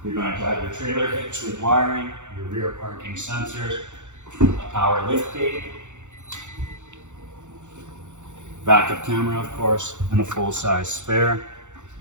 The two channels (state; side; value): late; left; 0.85 ms